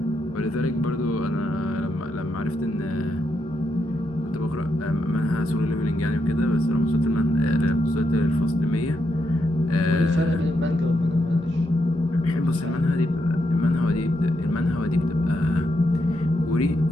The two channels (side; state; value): both; normal; correlation 0.81